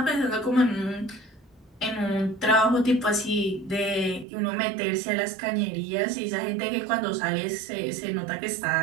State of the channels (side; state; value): left; drops out; at 4.2 s